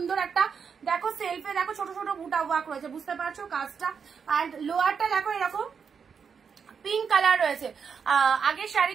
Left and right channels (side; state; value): left; quieter; 6.4 dB